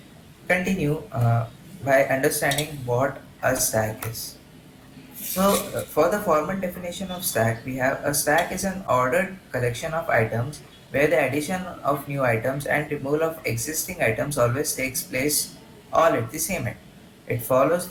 continue by understanding what a stack is. So for the formal definition of stack, we have a stack is an ordered collection of items where the addition of new items and removal of existing items always takes place all at the same time. It follows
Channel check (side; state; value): both; identical; correlation 1.00